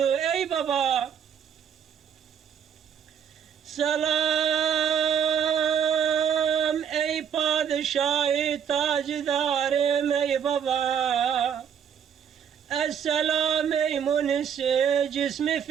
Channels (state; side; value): quieter; left; 8.0 dB